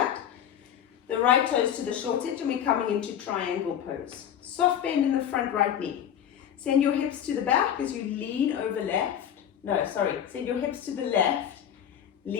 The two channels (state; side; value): quieter; right; 9.6 dB